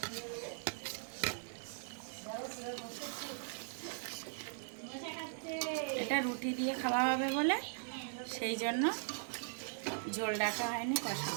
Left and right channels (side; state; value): left; silent; 51 dB below the other